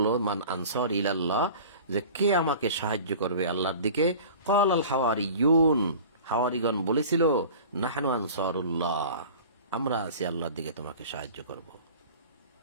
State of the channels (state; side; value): inverted; both; correlation -0.40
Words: মান আনসার ইলাল্লাহ, যে কে আমাকে সাহায্য করবে আল্লাহর দিকে, ক্বাল আল হাওয়ারিয়ুন, হাওয়ারিগণ বলেছিল, নাহনু আনসারুল্লাহ, আমরা আছি আল্লাহর দিকে তোমাকে সাহায্য করব।